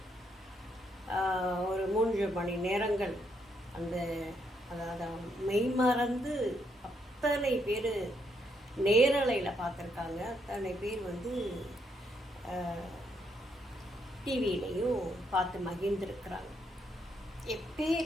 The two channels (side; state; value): both; normal; correlation 0.76